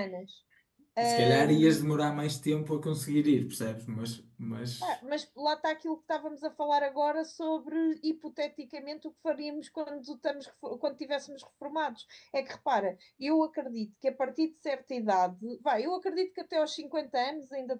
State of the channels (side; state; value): both; identical; correlation 1.00